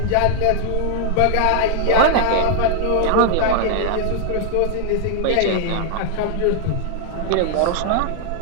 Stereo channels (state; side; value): different; both; correlation 0.00